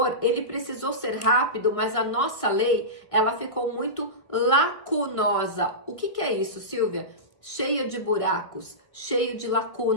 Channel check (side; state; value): right; late; 1.5 ms